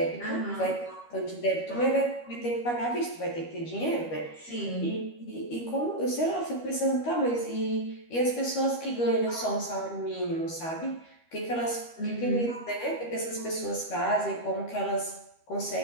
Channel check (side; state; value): right; late; 13 ms